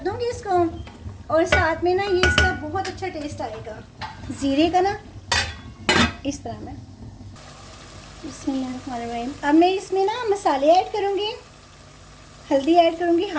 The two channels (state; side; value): identical; both; correlation 1.00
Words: दूँगी इसको। और साथ में ना ये इसका बहुत अच्छा टेस्ट आएगा ज़ीरे का ना, इस तरह में। बिस्मिल्लाहिर्रहमानिर्रहीम। अब मैं इसमें ना मसाले ऐड करूँगी। हल्दी ऐड करूँगी